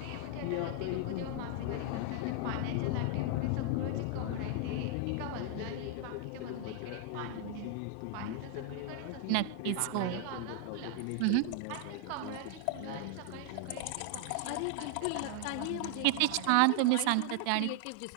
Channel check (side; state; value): both; different; correlation 0.00